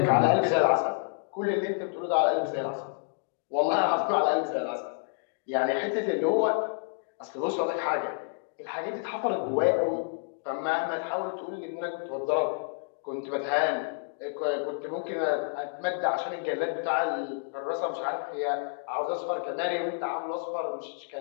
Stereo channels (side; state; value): right; silent; digital silence